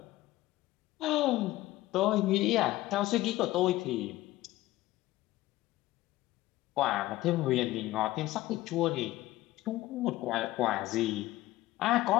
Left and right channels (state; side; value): quieter; right; 16.8 dB